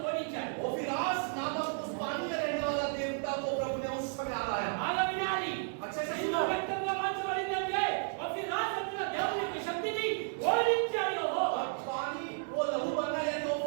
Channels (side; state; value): left; silent; 56 dB below the other